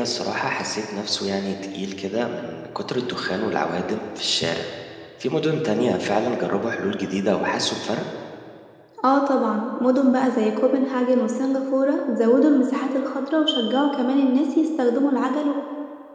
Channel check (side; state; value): both; identical; correlation 1.00